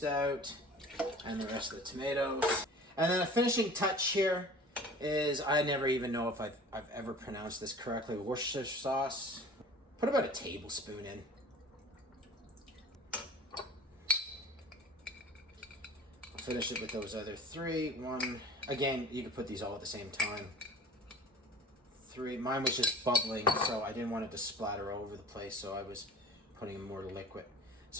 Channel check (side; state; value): both; normal; correlation 0.43